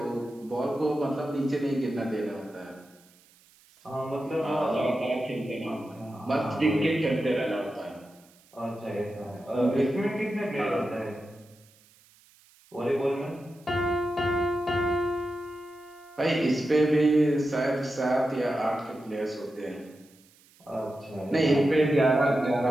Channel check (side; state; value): right; noise; hiss, 29 dB below the sound